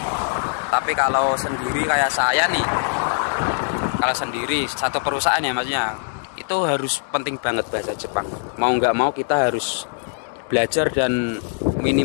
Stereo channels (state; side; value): silent; right; digital silence